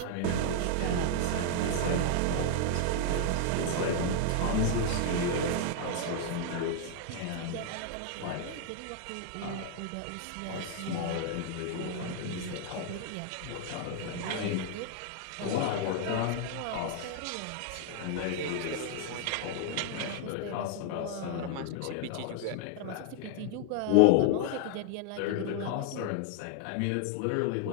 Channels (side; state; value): both; different; correlation 0.00